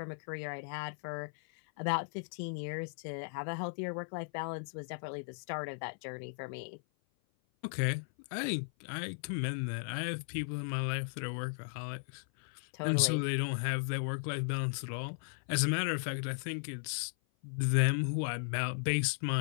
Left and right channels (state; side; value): silent; right; 54 dB below the other